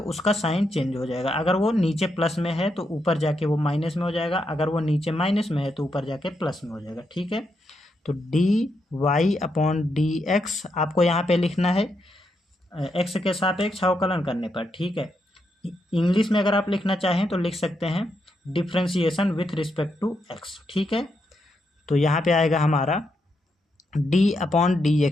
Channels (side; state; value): both; normal; correlation 0.81